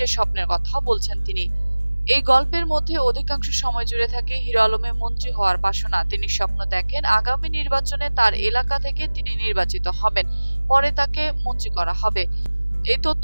স্বপ্নের কথা বলছেন তিনি। এই গল্পের মধ্যে অধিকাংশ সময় জুড়ে থাকে হিরো আলমের মন্ত্রী হওয়ার বাসনা। তিনি স্বপ্ন দেখেন আগামী নির্বাচনে তার এলাকা থেকে তিনি নির্বাচিত হবেন, পরে তাকে মন্ত্রী করা হবে। এই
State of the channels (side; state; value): both; inverted; correlation -1.00